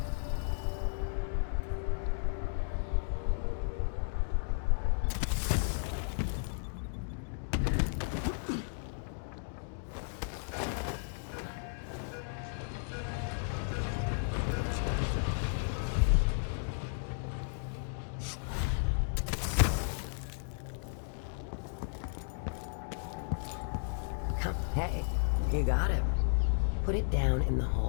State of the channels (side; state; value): right; silent; digital silence